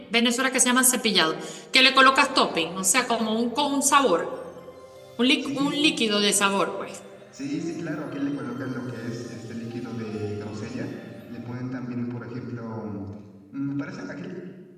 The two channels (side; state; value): both; identical; correlation 1.00